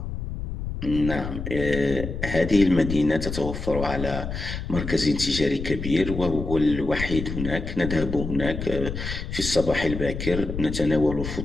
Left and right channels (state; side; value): noise; left; rumble, 6 dB below the sound